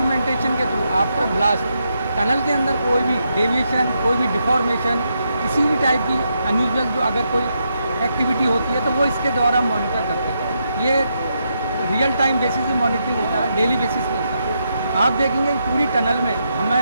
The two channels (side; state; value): both; inverted; correlation -0.81